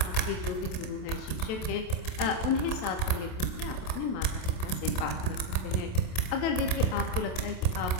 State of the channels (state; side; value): late; right; 27 ms